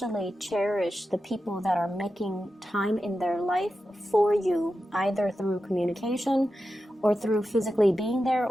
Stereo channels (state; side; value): normal; both; correlation 0.91